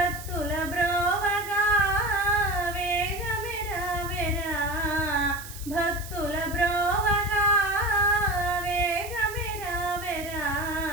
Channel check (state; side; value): noise; right; hiss, 14 dB below the sound